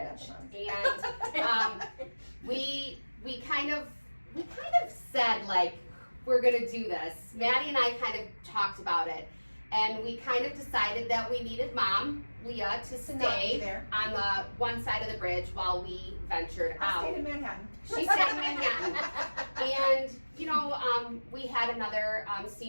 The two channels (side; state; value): both; inverted; correlation -1.00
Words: And we kind of said, like, we're gonna do this. Maddie and I kind of talked about it, and we kind of decided that we needed Mom, Leah, to To not be stay there. on the one side of the bridge while we ventured I out. stayed in Manhattan. She stayed in Manhattan. And, we had another